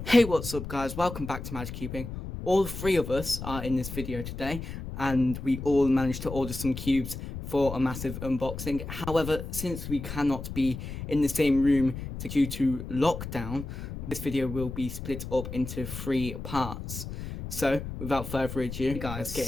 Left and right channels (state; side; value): noise; left; rumble, 8 dB below the sound